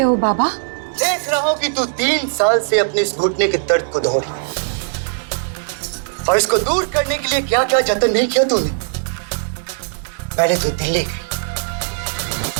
हो बाबा? देख रहा हूं कि तू 3 साल से अपने इस घुटने के दर्द को दौड़ रही है, और इसको दूर करने के लिए क्या क्या जतन नहीं किया तूने। पहले तो दिल्ली गई,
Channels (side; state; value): left; silent; digital silence